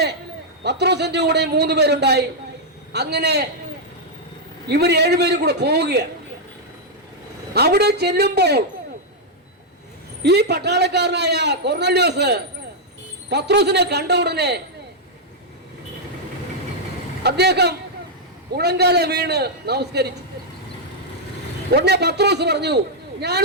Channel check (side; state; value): both; normal; correlation -0.04